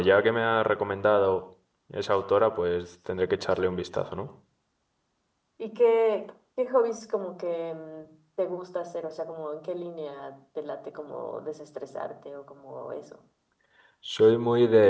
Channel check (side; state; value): both; identical; correlation 1.00